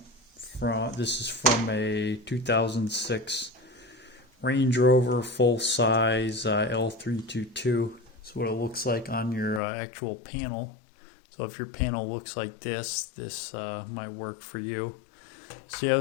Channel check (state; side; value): drops out; right; at 9.6 s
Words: This is from a 2006 Range Rover full-size L322. That's what it looks like on your actual panel. So if your panel looks like this, might work for you. So yeah,